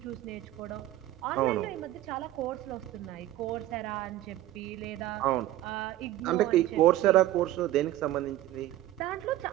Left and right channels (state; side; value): quieter; left; 14.4 dB